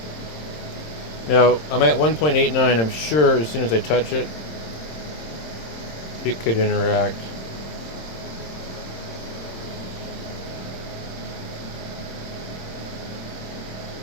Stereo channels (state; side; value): late; right; 26 ms